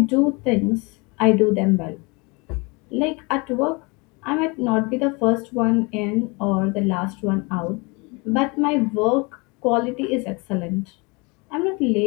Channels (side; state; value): right; quieter; 28.4 dB